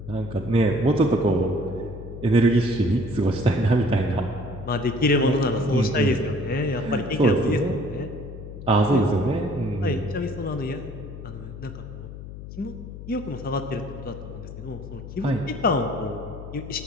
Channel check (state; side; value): noise; left; hum, 12 dB below the sound